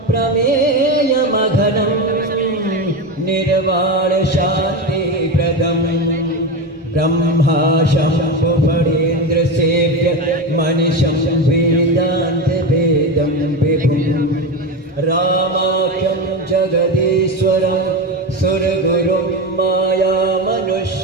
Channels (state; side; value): normal; both; correlation 0.18